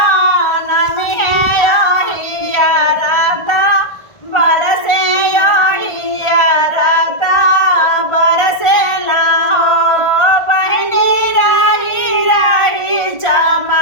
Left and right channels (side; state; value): right; late; 1.4 ms